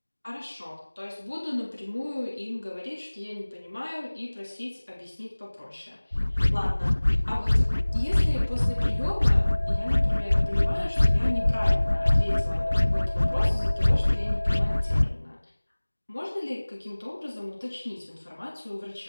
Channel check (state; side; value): inverted; both; correlation -1.00